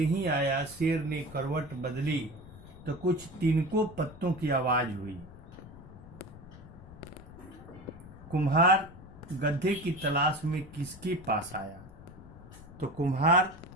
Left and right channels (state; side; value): noise; left; rumble, 17 dB below the sound